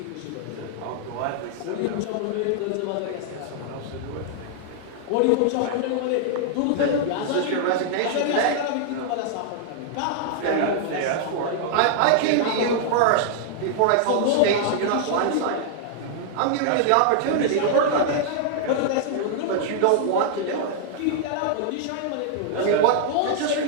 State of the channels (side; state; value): both; different; correlation -0.01